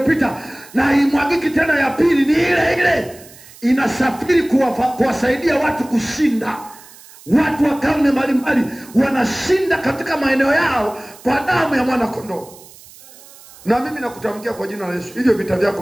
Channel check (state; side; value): noise; right; hiss, 22 dB below the sound